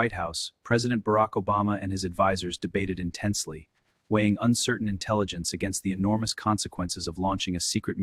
House, President Barack Obama and his advisors debated intensely, weighing uncertain intelligence against the enormous consequences of launching a secret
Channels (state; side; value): identical; both; correlation 1.00